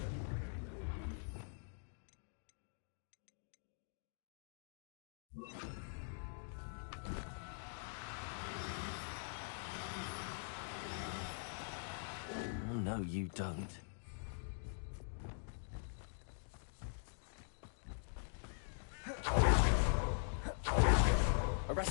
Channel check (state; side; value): silent; right; digital silence